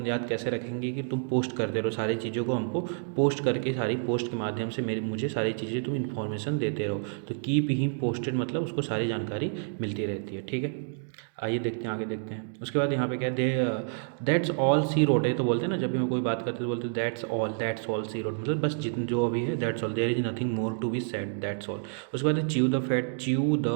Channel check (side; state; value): left; silent; digital silence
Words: याद कैसे रखेंगे कि तुम पोस्ट करते रहो सारी चीज़ों को, हमको पोस्ट करके सारी पोस्ट के माध्यम से मुझे सारी चीज़ें तुम इन्फॉर्मेशन देते रहो। तो कीप हिम पोस्टेड मतलब उसको सारी जानकारी मिलती रहती है। ठीक है, आइए देखते हैं, आगे देखते हैं। उसके बाद यहाँ पे क्या है, दैट्स ऑल सी रोड है। तो बोलते हैं ना, जब भी हम कोई बात करते हैं तो बोलते हैं दैट्स ऑल सी रोड, मतलब बस जितने जो अभी है that's all, there is nothing more to be said, that's all. उसके बाद च्यू द